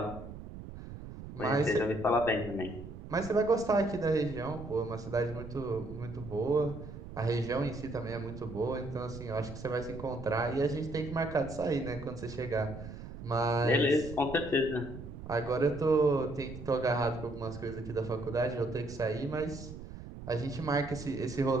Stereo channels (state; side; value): noise; right; rumble, 12 dB below the sound